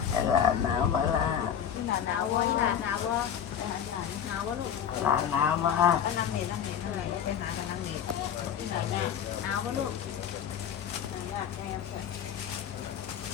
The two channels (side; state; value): right; quieter; 8.8 dB